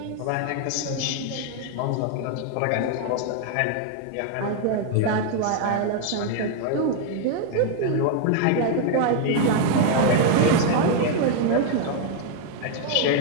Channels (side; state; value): both; different; correlation 0.00